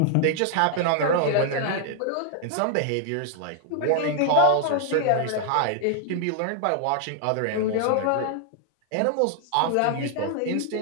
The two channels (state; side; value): different; both; correlation 0.00